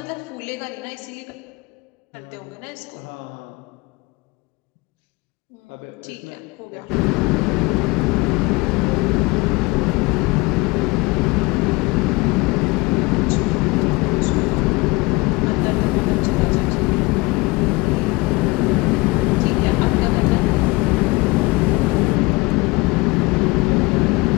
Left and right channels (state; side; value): quieter; right; 24.0 dB